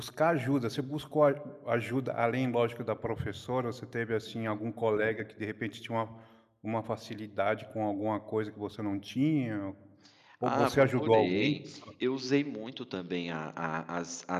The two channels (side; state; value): both; identical; correlation 1.00